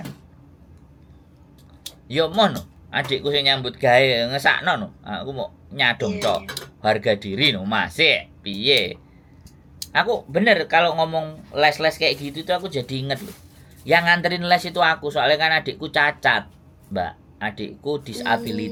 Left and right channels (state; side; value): identical; both; correlation 1.00